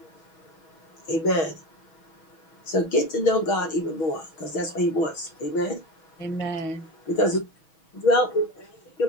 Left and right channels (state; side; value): late; right; 6.2 ms